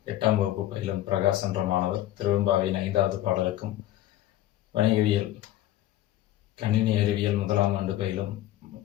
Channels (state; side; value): quieter; right; 14.0 dB